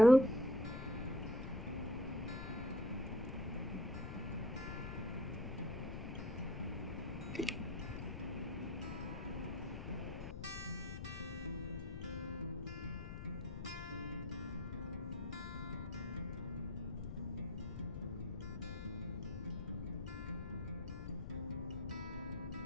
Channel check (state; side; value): noise; left; rumble, 6 dB below the sound